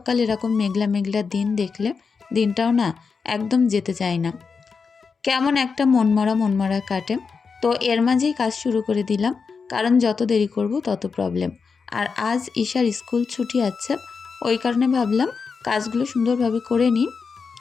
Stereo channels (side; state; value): right; quieter; 5.3 dB